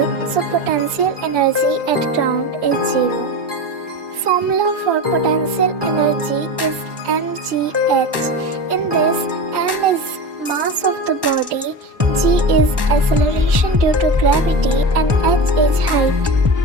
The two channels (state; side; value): late; left; 1.1 ms